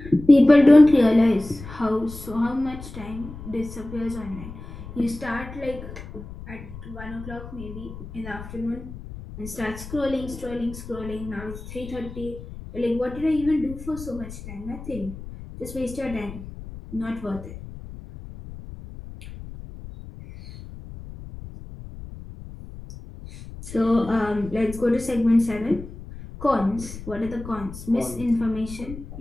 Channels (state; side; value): noise; left; rumble, 13 dB below the sound